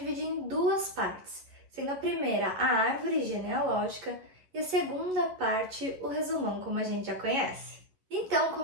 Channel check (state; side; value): late; left; 11 ms